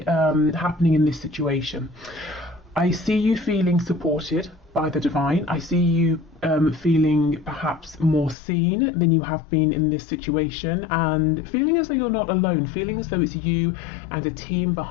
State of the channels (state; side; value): drops out; right; at 8.3 s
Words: in this situation, I see you feeling supported by the divine. I see you feeling perhaps more seen than you have been in this situation, and feeling as though you're not alone, feeling as though it's you and a team